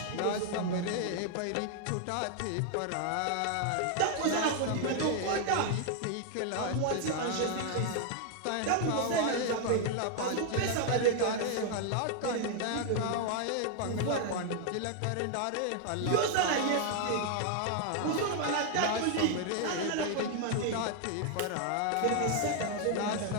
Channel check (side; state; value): both; different; correlation 0.00